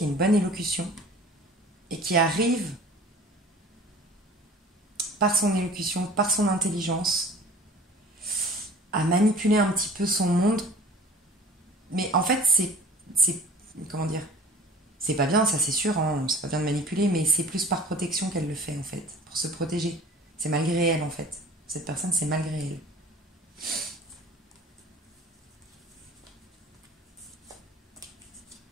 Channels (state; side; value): normal; both; correlation 0.44